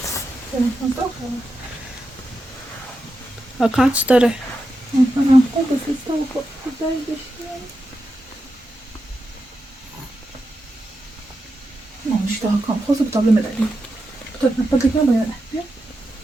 واکانس داره. Non, je te raconte. Cosa potrebbe me dare? Potrebbe me dare.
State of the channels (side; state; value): both; normal; correlation 0.88